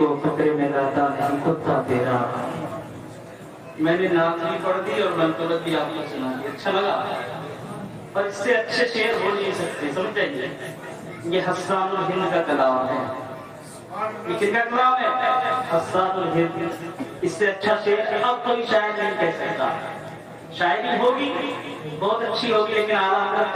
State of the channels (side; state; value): both; identical; correlation 1.00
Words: خطرے میں لاتا نہیں کتا تیرا۔ میں نے نعت بھی پڑھ دی اور منقبت بھی آپ کو سنا دی، اچھا لگا؟ اور اس سے اچھے شعر ہو نہیں سکتے، سمجھیں؟ یہ حسان الہند کا کلام ہے، یہ کن کا کلام ہے؟ حسان الہند۔ اس سے اچھا شعر اب کوئی شاعر نہیں کہہ سکتا، شاعری ہوگی بہت اچھی ہوگی لیکن اعلیٰ حضرت